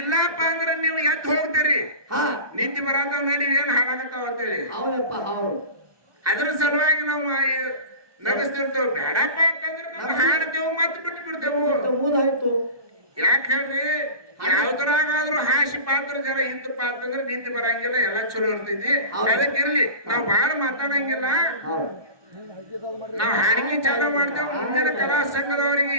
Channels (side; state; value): left; late; 1.2 ms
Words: ಅಂದ್ರೆ ನೀವು ಎದ್ದು ಹೋಗ್ತೀರಿ ನಿದ್ದೆ ಬರತಾವ ನಡಿ ಏನ್ ಹಾಳಾಗತ್ತಾವ ಅಂತೇಳಿ ಅದ್ರ ಸಲುವಾಗಿ ನಾವು ನಗಿಸ್ತಿರ್ತೇವೆ ಬೇಡಪ್ಪ ಅಂತಂದ್ರೆ ನಾವು ಹಾಡ್ತೇವೆ ಮತ್ತೆ ಬಿಟ್ಟು ಬಿಡ್ತೇವೆ ಯಾಕೆ ಹೇಳ್ರಿ ಯಾವ್ದ್ರಾಗಾದ್ರೂ ಹಾಸಿ ಪಾತ್ರ ಜರ ಇಂತ ಪಾತ್ರ ಅಂದ್ರೆ ನಿಂತು ಬರಂಗಿಲ್ಲ ಎಲ್ಲ ಚಲೋ ಇರ್ತೈತಿ ಅದಕ್ಕಿರ್ಲಿ ನಾವ್ ಬಾಳ ಮಾತಾಡಂಗಿಲ್ಲ ನಾವ್ ಹಾಡಿಗೆ ಚಾಲ ಮಾಡ್ತೇವ್ ಮುಂದಿನ ಕಲಾ